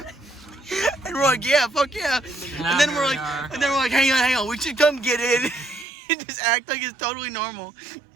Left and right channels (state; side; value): drops out; left; at 5.9 s